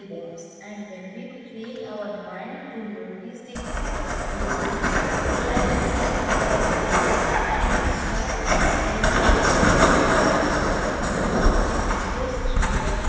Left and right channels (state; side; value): identical; both; correlation 1.00